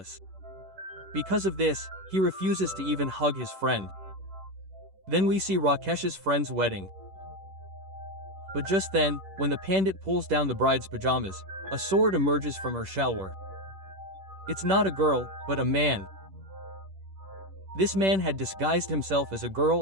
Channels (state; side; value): late; left; 10 ms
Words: Because of this, he refuses to even hug his friend. Then we see Rakesh's friend's wedding. But just then, when the pandit pulls down the bride's pajamas, a sword emerges from her shalwar. It's not a girl, but a man. This man had disguised himself as a